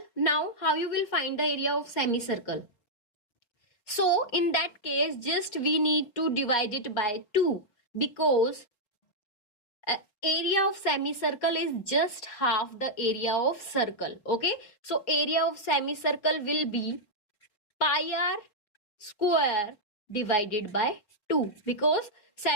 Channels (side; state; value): right; late; 4.9 ms